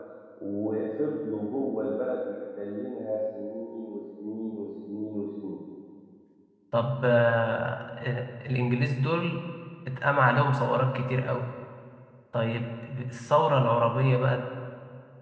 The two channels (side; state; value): both; identical; correlation 1.00